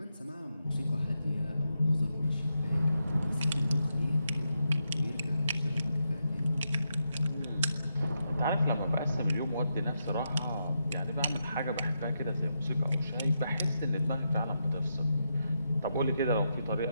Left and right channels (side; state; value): both; inverted; correlation -0.83